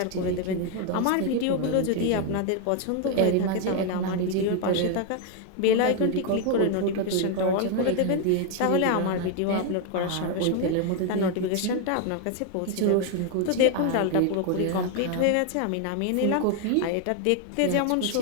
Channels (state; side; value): different; both; correlation 0.01